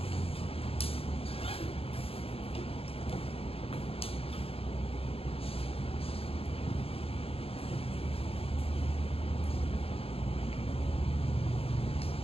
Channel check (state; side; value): late; right; 0.28 ms